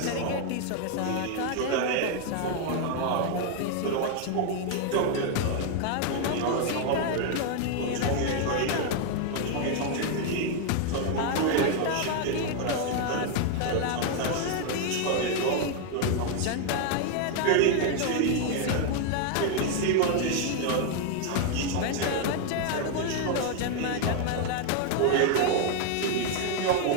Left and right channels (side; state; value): both; different; correlation 0.00